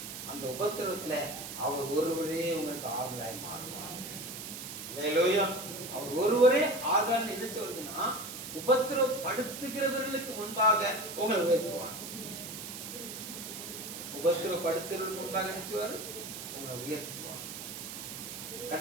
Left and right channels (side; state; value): right; noise; hiss, 9 dB below the sound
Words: அந்த உபத்திரத்துல அவர் ஒருவரே உங்களுக்கு ஆறுதலாய் மாறுவார். அல்லேலூயா. அவர் ஒருவரே ஆறுதல் என்ன சொல்றதுன்னா, உபத்திரப்படுத்துகிறவர்களுக்கு முன்பாக உங்களை உயர்த்துவார். உபத்திரப்படுத்துகிறவர்களுக்கு முன்பாக நினைச்சுவார், உங்களை உயர்த்துவார்.